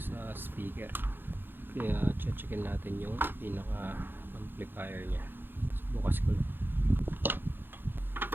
speaker. Kaya checkin natin yung pinaka amplifier niya. So, bukas ko lang.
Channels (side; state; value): left; late; 0.099 ms